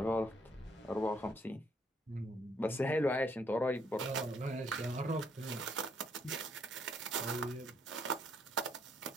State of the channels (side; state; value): both; normal; correlation 0.69